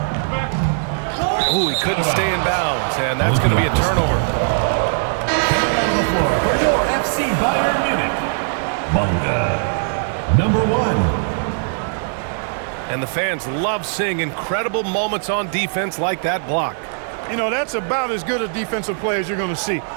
Oh, he couldn't stay in bounds, and that's going to be a turnover. Coming on the floor for your FC Bayern Munich, Bunga, number 1. And the fans love seeing incredible moments on defense like that block. You know, that's about as good a defensive play as you're going to see.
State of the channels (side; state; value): left; silent; digital silence